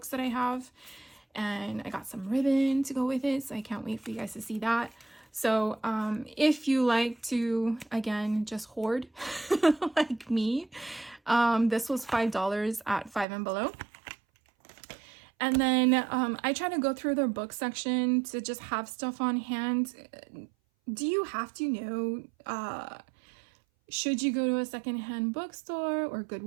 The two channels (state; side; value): drops out; left; at 13.2 s